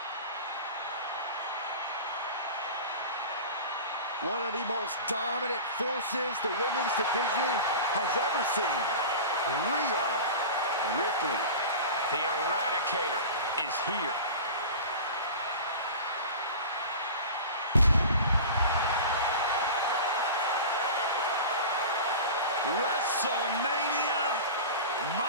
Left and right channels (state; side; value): inverted; both; correlation -0.33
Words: One of the most dominant forces the women's division has ever seen. Rhea Ripley. The Eradicator. is here. WrestleMania,